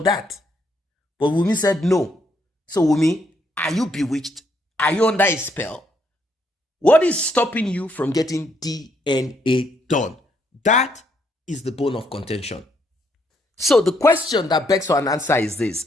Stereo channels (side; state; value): both; normal; correlation 0.73